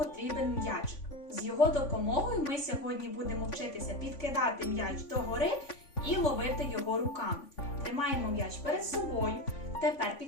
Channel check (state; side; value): late; right; 3.5 ms